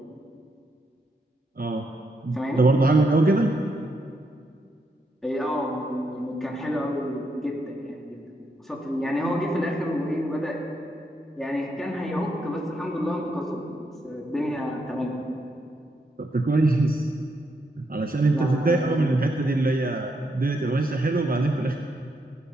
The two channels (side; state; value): both; normal; correlation 0.79